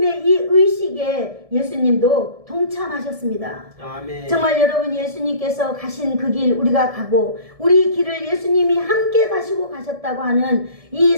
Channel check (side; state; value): left; late; 1.7 ms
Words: 이 의식에 예수님도 동참하셨습니다. 아멘. 정말 여러분 예수님께서 가신 그 길 우리가 가고 우리 길을 예수님이 함께 가시고 가셨다고 하는 이